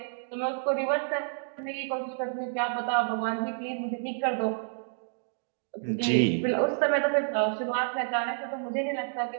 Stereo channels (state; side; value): silent; left; digital silence